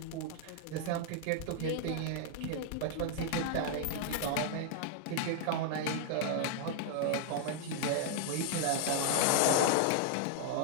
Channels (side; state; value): both; different; correlation -0.01